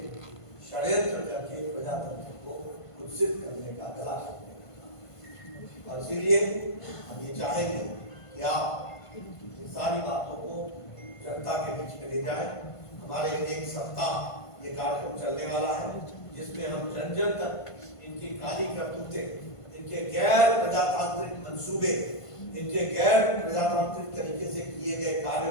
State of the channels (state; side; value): late; right; 1.5 ms